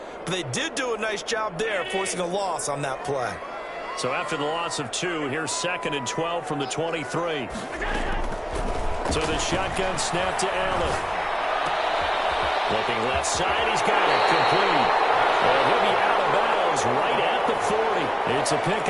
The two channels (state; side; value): identical; both; correlation 1.00